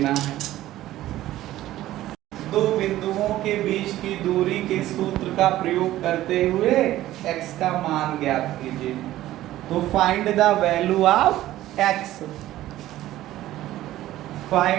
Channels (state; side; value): quieter; left; 14.7 dB